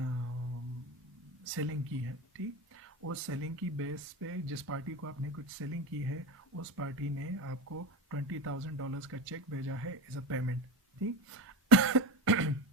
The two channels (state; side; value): normal; both; correlation 0.24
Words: सेलिंग की है। ठीक, उस सेलिंग की बेस पे जिस पार्टी को आपने कुछ सेलिंग की है उस पार्टी ने आपको $20,000 का चेक भेजा है एज अ पेमेंट। ठीक,